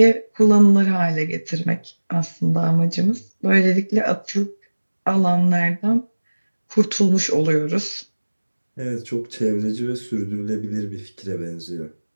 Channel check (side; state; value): both; inverted; correlation -1.00